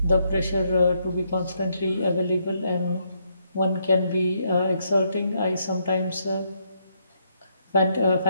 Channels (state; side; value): inverted; both; correlation -0.75